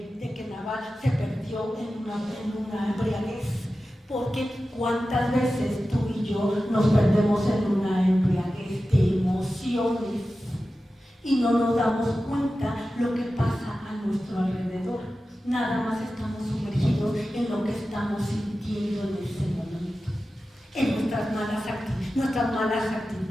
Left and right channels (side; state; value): both; normal; correlation 0.94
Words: Nabal se perdió en una embriaguez? Porque cuántas veces tú y yo nos perdemos en una embriaguez de emociones y no nos damos cuenta lo que pasa a nuestro alrededor. Nada más estamos sumergidos en lo que estamos sintiendo en ese momento, en nuestras malas